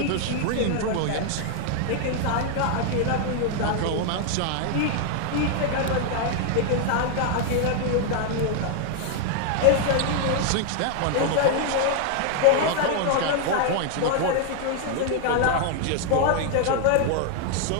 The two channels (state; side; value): different; both; correlation 0.00